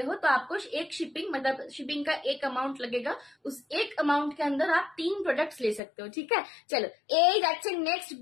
हो तो आपको एक शिपिंग, मतलब शिपिंग का एक अमाउंट लगेगा। उस एक अमाउंट के अंदर आप 3 प्रोडक्ट्स ले सकते हो, ठीक है। चलो এই যাচ্ছে নেক্সট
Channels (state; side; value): drops out; right; at 5.8 s